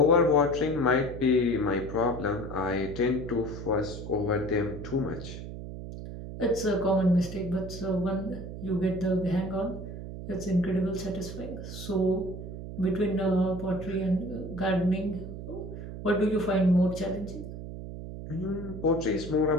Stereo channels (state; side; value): noise; right; hum, 9 dB below the sound